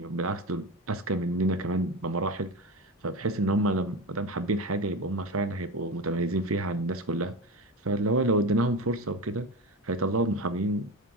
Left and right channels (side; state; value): both; normal; correlation 0.24